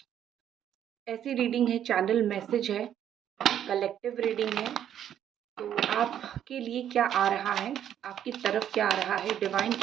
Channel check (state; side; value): quieter; left; 10.1 dB